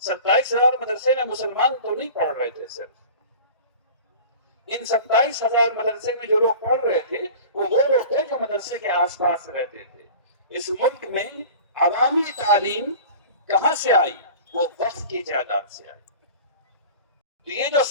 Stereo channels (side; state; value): both; inverted; correlation -0.40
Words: 27,000 مدرسے میں مسلمان تو نہیں پڑھ رہے تھے. صرف ان 27,000 مدرسے میں جو لوگ پڑھ رہے تھے وہ لوگ تھے جو مدرسے کے آس پاس رہتے تھے. اس ملک میں عوامی تعلیم کہاں سے آئی؟ وہ وقف کی جائیداد سے آئی. تو یہ جو